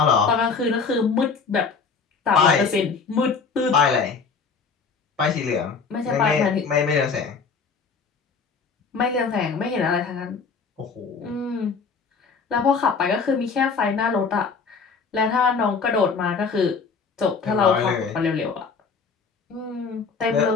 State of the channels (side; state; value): right; quieter; 5.2 dB